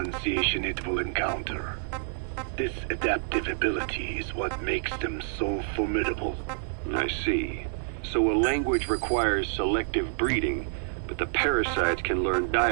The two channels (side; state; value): left; silent; 59 dB below the other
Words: it will encounter. This adaptive ability is what makes them so formidable. I see. So a language requires selective breeding, but the parasites can learn